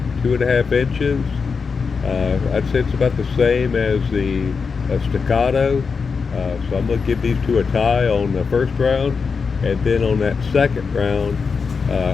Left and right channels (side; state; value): right; quieter; 5.3 dB